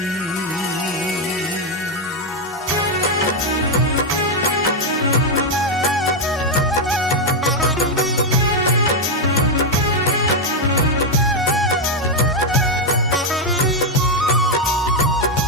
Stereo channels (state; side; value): normal; both; correlation 0.03